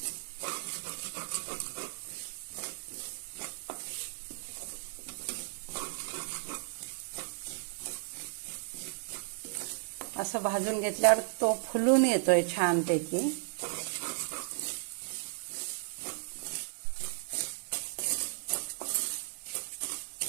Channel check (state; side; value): silent; left; digital silence